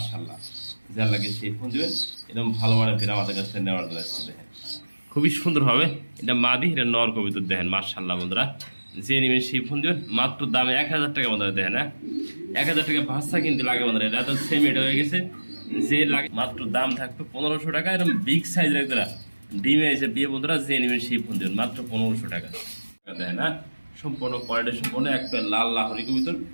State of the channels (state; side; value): inverted; both; correlation -1.00